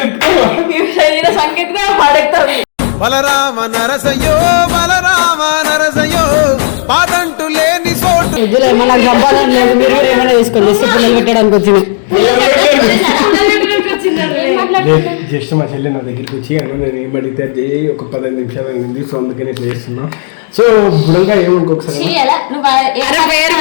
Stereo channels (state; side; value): silent; right; digital silence